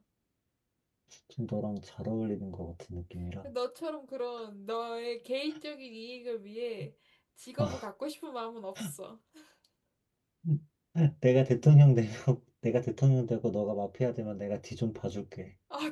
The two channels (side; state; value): both; identical; correlation 1.00